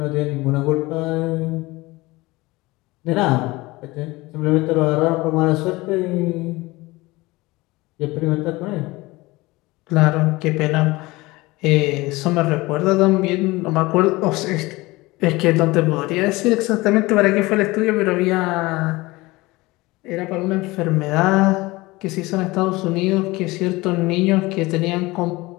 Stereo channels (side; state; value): right; quieter; 21.2 dB